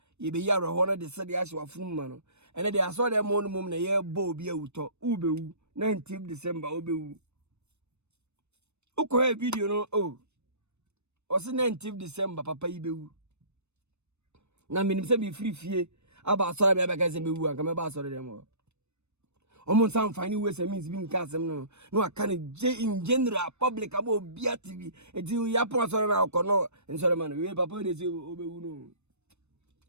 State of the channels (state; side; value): late; left; 0.81 ms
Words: Ye be yaro honor the city as wa fun mano. And then I saw them on mum na ye bo be uto ube 19th December ube. Uko video no oh. Osi 19th December papa ibe. Na minim se be free fie aba sorry be abega se be wu anka me ba sorry dem o. Omo san fani we se means bi nka asem no aka ne in general public aba obi TV enti ya pon sorry na ko no sorry man we papa dey say obewu no.